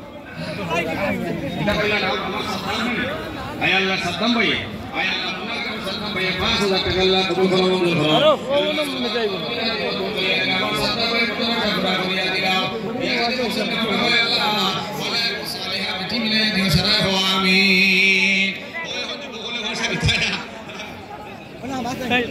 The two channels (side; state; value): both; identical; correlation 1.00